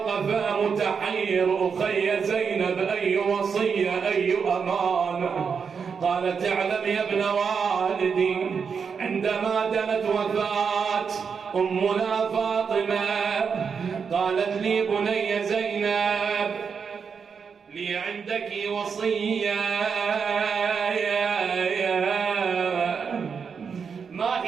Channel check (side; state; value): left; quieter; 6.1 dB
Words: متحير، أخي زينب أي وصية أي أمانة؟ قالت اعلم يا ابن والدي، عندما دنت وفاة أمنا فاطمة قالت لي بني زينب لي عندك وصية. ما